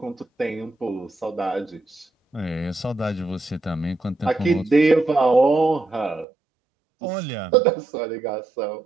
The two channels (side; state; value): left; drops out; at 6.2 s